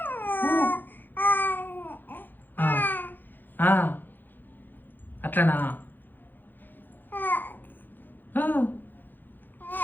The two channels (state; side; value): late; right; 0.090 ms